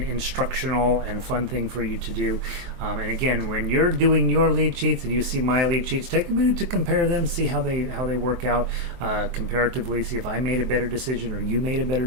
and fun thing for you to do. And again, when you're doing your lead sheets and you see my lead sheets, take a minute to compare them, see how they work out comparatively, see if I made a better decision or you made a better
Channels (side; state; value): left; late; 23 ms